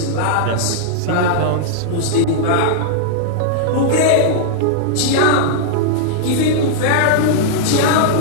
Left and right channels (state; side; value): different; both; correlation -0.01